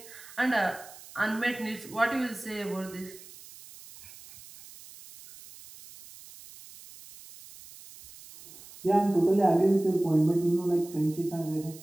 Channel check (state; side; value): noise; right; hiss, 19 dB below the sound